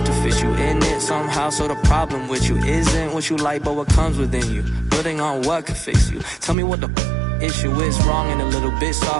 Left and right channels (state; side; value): drops out; left; at 6.6 s